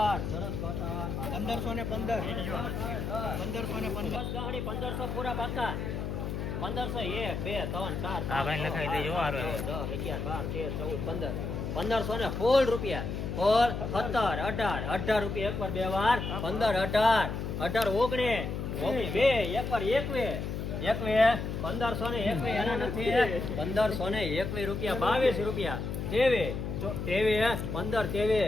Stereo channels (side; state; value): left; noise; hum, 4 dB below the sound